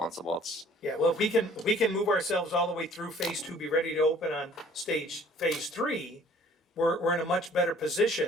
It's, Yeah, well, if we can move ourselves all the way through phase 2, be ready to open on phase 3, we're in a much better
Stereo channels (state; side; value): normal; both; correlation 0.55